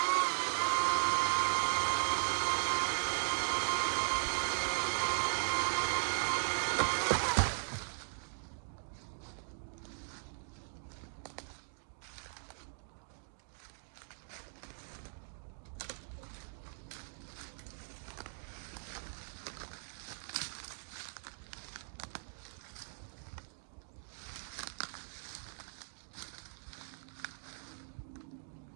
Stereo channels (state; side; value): silent; left; digital silence